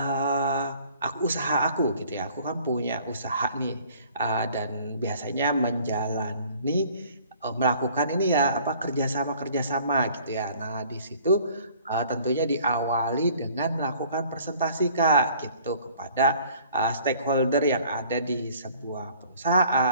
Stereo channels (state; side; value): inverted; both; correlation -0.54